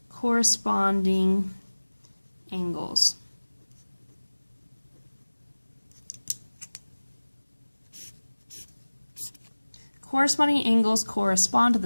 corresponding angles. Corresponding angles correspond to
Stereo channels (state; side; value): inverted; both; correlation -1.00